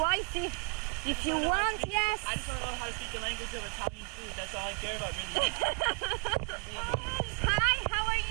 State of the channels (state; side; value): quieter; left; 32.1 dB